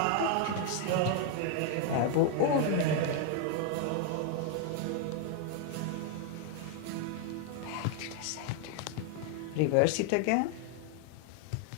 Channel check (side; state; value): both; different; correlation 0.00